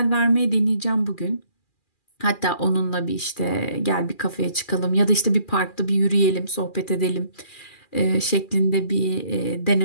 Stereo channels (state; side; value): late; right; 2.4 ms